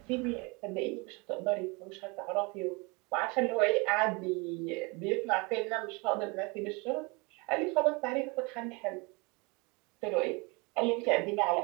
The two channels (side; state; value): left; quieter; 28.5 dB